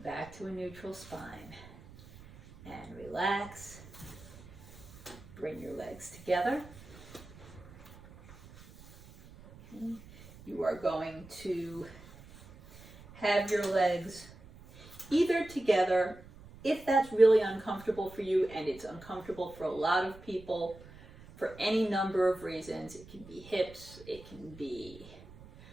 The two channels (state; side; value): noise; right; rumble, 20 dB below the sound